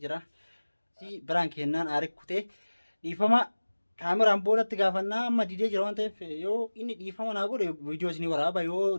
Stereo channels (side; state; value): both; inverted; correlation -1.00